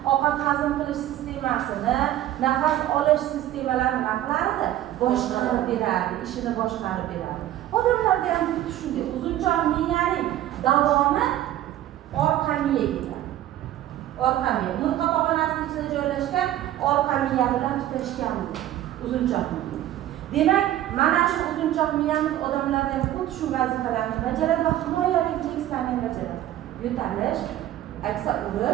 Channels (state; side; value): quieter; left; 13.1 dB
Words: ovqat hazm qilish sistemasini, nafas olish sistemalarini nima qilardi? Boshqarib beradi, ishini boshqarib beradi. Odamlarda ham xuddi shunday. Uzunchoq miyaning davomi orqa miya ketadi. Orqa miya, murqa pog'onasining ichida joylashgan orqa miya bilan tutashgan uzunchoq miya. Demak, mana shu uzunchoq miyamiz odamlarda ham xuddi shu vazifalarni bajaradi va himoya reflekslarni bajaradi. Yo'talish, aksa